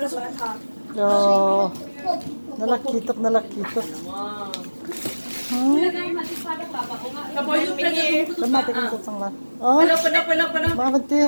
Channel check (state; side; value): inverted; both; correlation -1.00